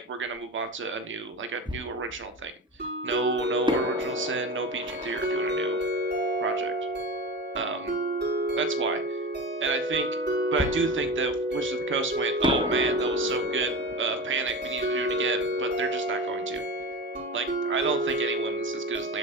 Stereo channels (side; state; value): both; normal; correlation 0.28